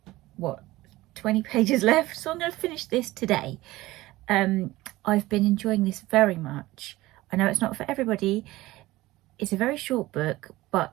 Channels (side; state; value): left; quieter; 18.1 dB